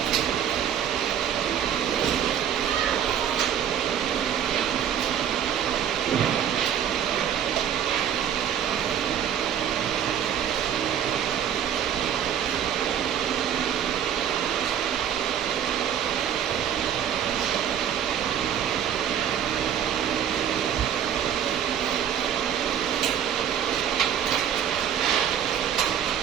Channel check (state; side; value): quieter; left; 9.2 dB